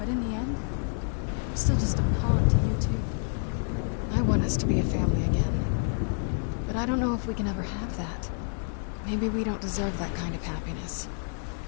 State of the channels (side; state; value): right; silent; 58 dB below the other